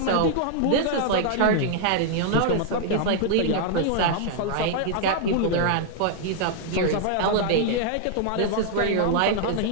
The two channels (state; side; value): different; both; correlation -0.01